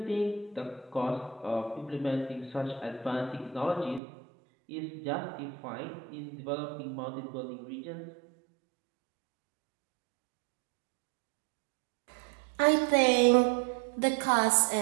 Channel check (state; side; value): drops out; left; at 4.0 s